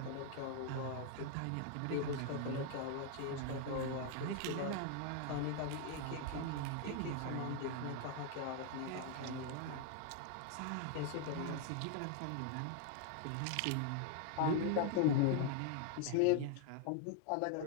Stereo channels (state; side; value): different; both; correlation 0.00